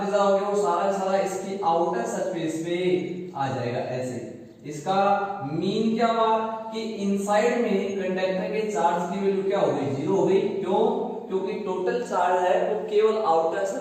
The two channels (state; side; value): identical; both; correlation 1.00